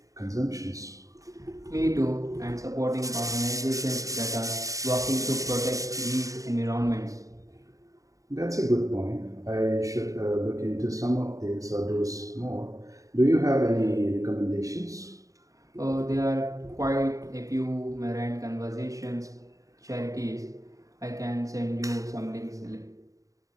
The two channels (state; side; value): late; left; 0.16 ms